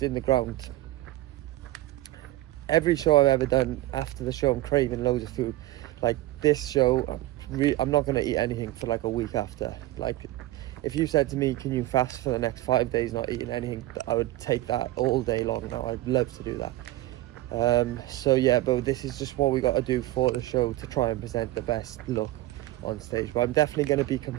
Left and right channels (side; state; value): left; quieter; 16.7 dB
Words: in the ground. Every show I've ever done, after the show I'm craving loads of food. Like this show, I'm not going to eat anything for like a week after. Like, if you said to me, can you fast for the next 5 days not eating anything, I would take that all day long now. I'd love to do that. So yeah, but this is just what we got to do for the show to try and present the best look on stage. But I'm definitely going to be